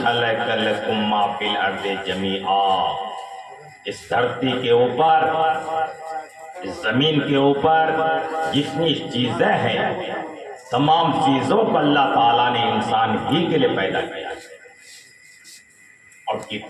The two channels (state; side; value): identical; both; correlation 1.00